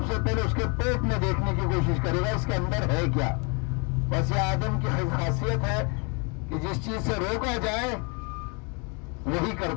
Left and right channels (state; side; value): quieter; right; 33.1 dB